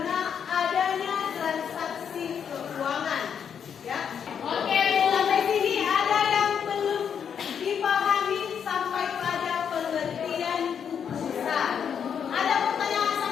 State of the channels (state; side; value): quieter; right; 7.7 dB